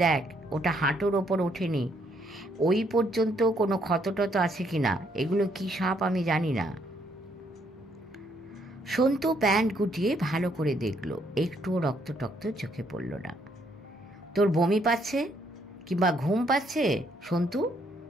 দেখ, ওটা হাঁটুর ওপর ওঠেনি। ওই পর্যন্ত কোনো ক্ষতটত আছে কিনা। এগুলো কি সাপ আমি জানি না। সন্তু প্যান্ট গুটিয়ে ভালো করে দেখলো, একটুও রক্ত টক্ত চোখে পড়ল না। তোর বমি পাচ্ছে কিংবা ঘুম পাচ্ছে সন্তু?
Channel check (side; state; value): both; normal; correlation 0.70